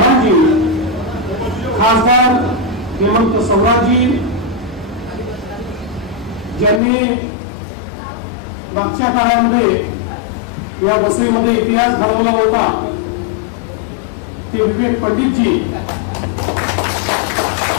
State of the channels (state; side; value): drops out; right; at 6.8 s